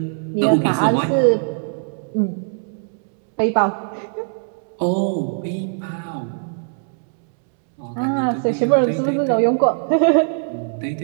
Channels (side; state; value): left; silent; 65 dB below the other